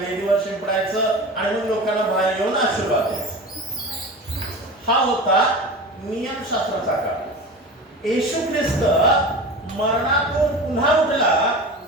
शिंपडायचं आणि मग लोकांना बाहेर येऊन आशीर्वाद द्यायचा. हा होता नियमशास्त्राचा काळ. येशू ख्रिस्त मरणातून पुन्हा उठला.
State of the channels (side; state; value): both; normal; correlation 0.31